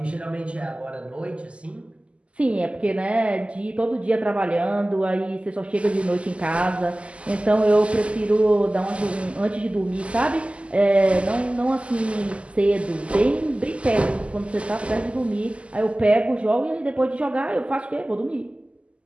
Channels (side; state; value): left; late; 0.057 ms